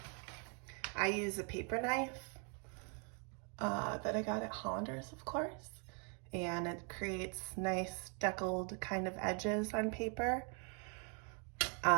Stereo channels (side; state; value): left; quieter; 38.4 dB